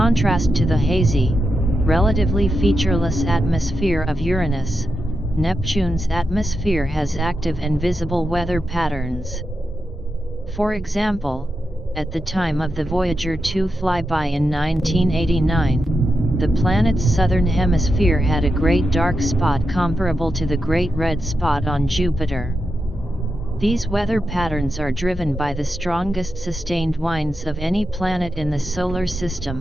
to the hazy, relatively featureless atmosphere of Uranus, Neptune's atmosphere has active and visible weather patterns. For example, at the time of the Voyager 2 flyby in 1989, the planet's southern hemisphere had a great dark spot comparable to the Great Red Spot on Jupiter. These weather patterns are driven by the strongest sustained winds of any planet in the Solar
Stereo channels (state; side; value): normal; both; correlation 0.87